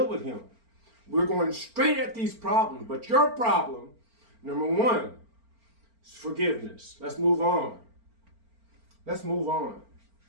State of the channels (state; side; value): late; left; 4.4 ms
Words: with him. We're going straight at these problems. But your problem, number one, is forgiveness. Let's move on. Let's move on.